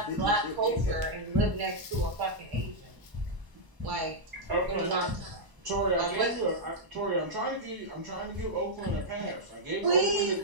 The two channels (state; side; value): late; left; 1.0 ms